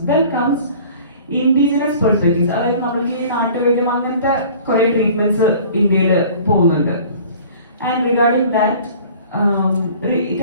Then comes indigenous perspectives. അതായത് നമ്മൾക്ക് ഈ നാട്ടുവൈദ്യം അങ്ങനത്തെ കുറെ ട്രീറ്റ്മെന്റ്സ് ഇന്ത്യയിൽ പോകുന്നുണ്ട്. And regarding that, it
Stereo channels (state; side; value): inverted; both; correlation -0.47